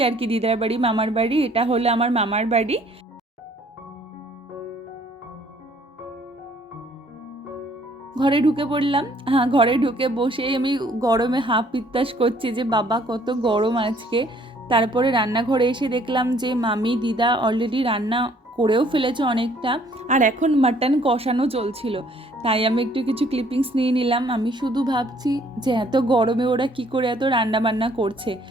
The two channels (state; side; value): normal; both; correlation 0.61